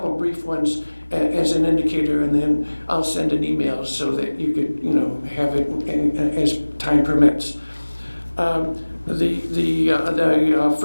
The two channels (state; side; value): inverted; both; correlation -1.00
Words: brief ones as an indicator, and then I'll send an email so that you could, have it as time permits. The